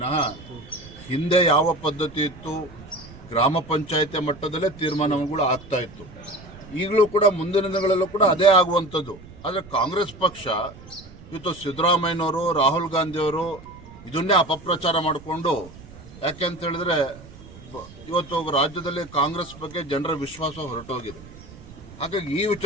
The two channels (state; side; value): noise; right; rumble, 19 dB below the sound